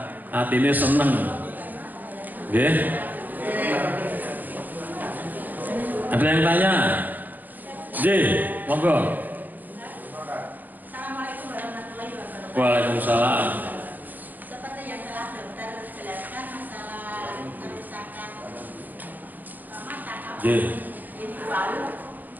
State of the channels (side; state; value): left; late; 0.085 ms